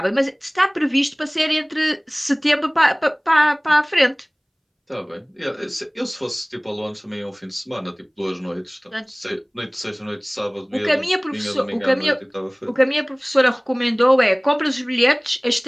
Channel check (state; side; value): identical; both; correlation 1.00